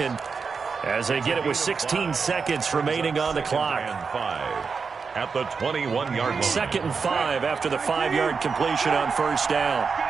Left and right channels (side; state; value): left; quieter; 5.3 dB